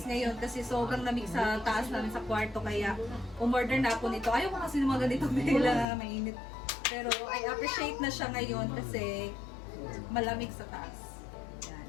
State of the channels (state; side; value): drops out; right; at 5.9 s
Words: ngayon kasi sobrang lamig sa taas namin sa kwarto kaya umorder na ako nito. Ayaw ko kasi ng mga ganitong tela, mainit. Pero I appreciate na siya ngayon kasi malamig sa taas.